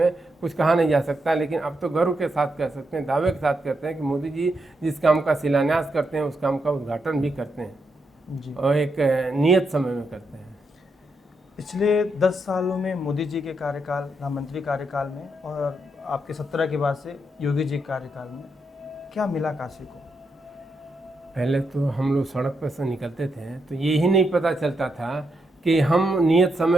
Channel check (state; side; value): normal; both; correlation 0.82